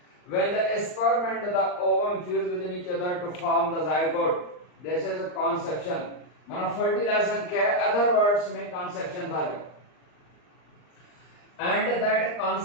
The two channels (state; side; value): late; right; 39 ms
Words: When the sperm and the ovum fuse within each other to form the zygote, this is a conception. माना fertilization क्या है? Other words में conception था जो, and that